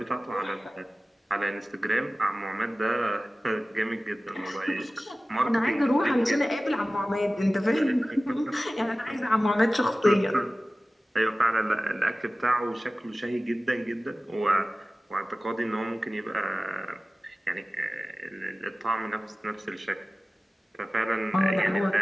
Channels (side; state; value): both; normal; correlation 0.97